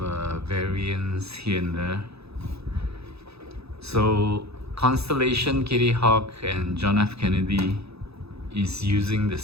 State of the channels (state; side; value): late; left; 0.78 ms